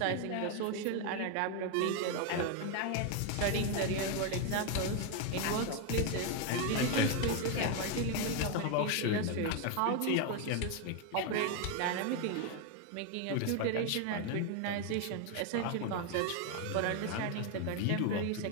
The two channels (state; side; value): different; both; correlation 0.01